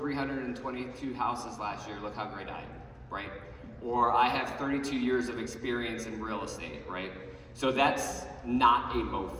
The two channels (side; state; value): both; identical; correlation 1.00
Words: houses last year, look how great I am, right? Or I have 32 years of experience in real estate, right? So that's not a